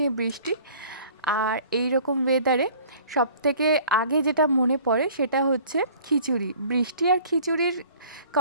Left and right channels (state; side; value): inverted; both; correlation -0.50